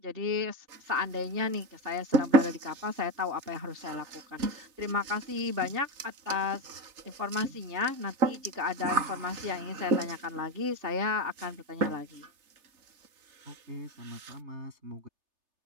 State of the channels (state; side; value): late; left; 3.3 ms